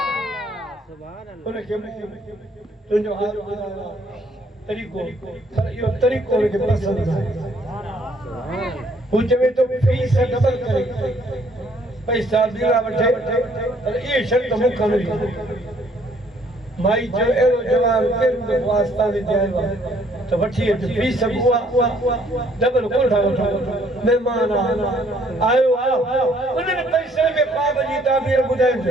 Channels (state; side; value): normal; both; correlation 0.63